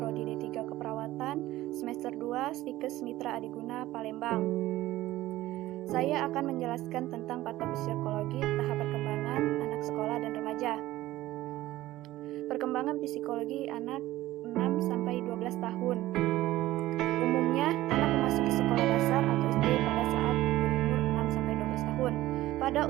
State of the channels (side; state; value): left; quieter; 16.1 dB